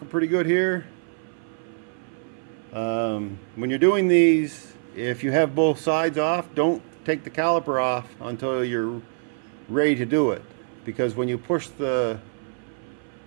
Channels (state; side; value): silent; left; 59 dB below the other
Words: pretty good here. When you're doing these, if you have both sides off, don't take the caliper off until you're ready to do it. Because when you push the